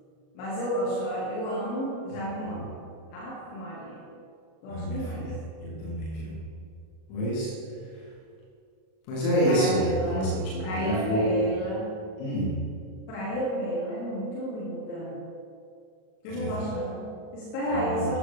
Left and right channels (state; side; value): late; right; 37 ms